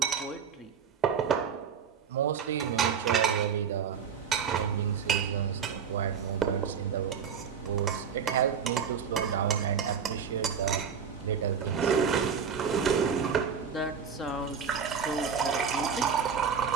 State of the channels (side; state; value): left; quieter; 6.9 dB